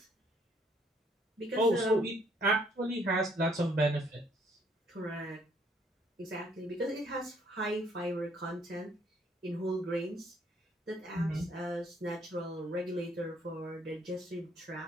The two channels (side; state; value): both; normal; correlation 0.66